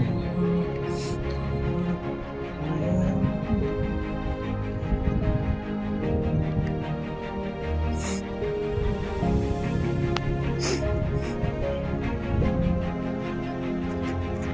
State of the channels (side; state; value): both; identical; correlation 1.00